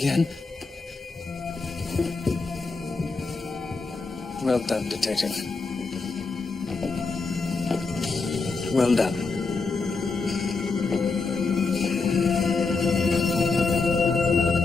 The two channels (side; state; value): right; quieter; 4.1 dB